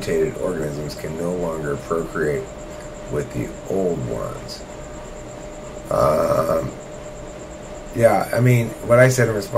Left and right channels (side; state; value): both; identical; correlation 1.00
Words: organisms can no longer procreate with the old ones. Yeah, I mean, what I said in